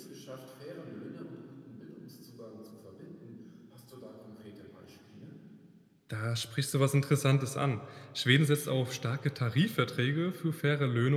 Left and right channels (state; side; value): identical; both; correlation 1.00